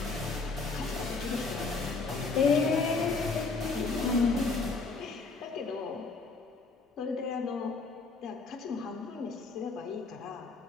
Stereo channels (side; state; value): right; quieter; 4.1 dB